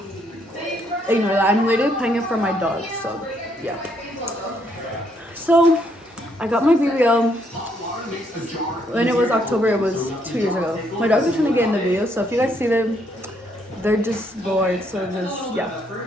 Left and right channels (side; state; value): both; normal; correlation 0.72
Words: ignore that. I'm literally playing it for my dog. So yeah. So I got my BBL. When it was October, it was 2 years ago. My dogs are trying to get in the video, so if you guys see them, they're just bored, so just, yeah,